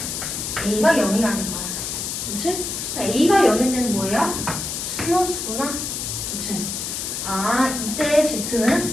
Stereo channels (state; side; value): noise; left; hiss, 4 dB below the sound